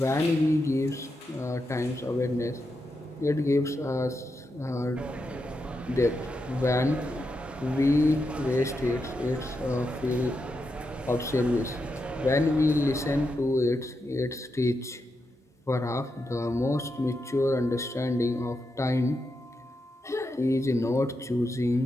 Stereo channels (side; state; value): both; normal; correlation 0.86